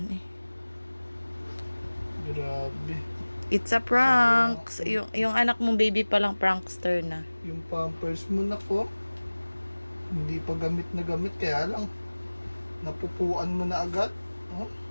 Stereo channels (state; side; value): inverted; both; correlation -1.00